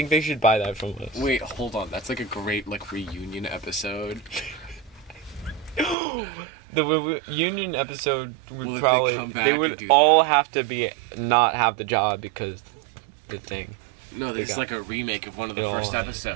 they should buy that from us. Wait, hold on. That's like a great reunion episode. The reunion episode would Will they probably come back they and would do all have to be not have the job because the thing. No, They it's got- like a remake of one of the It'll- first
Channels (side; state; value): left; drops out; at 6.0 s